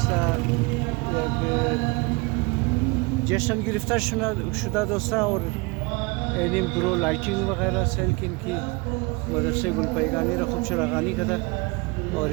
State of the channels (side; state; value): left; quieter; 26.9 dB